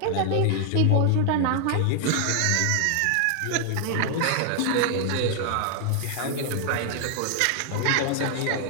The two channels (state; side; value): different; both; correlation 0.00